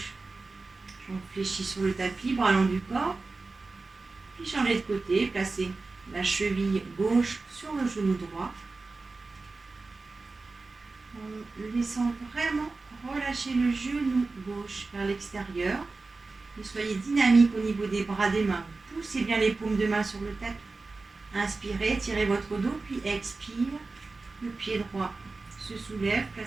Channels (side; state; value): left; quieter; 3.7 dB